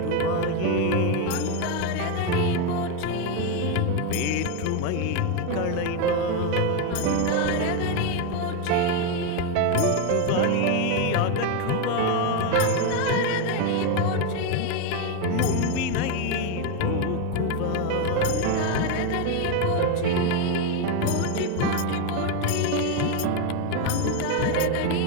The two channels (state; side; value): different; both; correlation 0.02